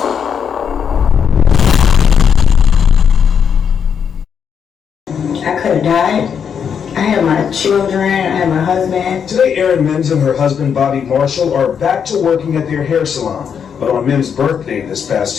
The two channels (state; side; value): quieter; right; 7.3 dB